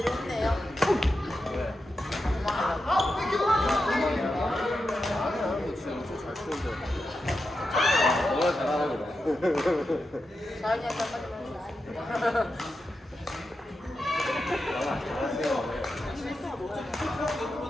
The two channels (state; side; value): normal; both; correlation 0.89